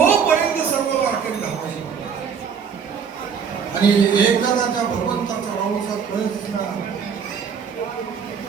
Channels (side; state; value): left; quieter; 6.8 dB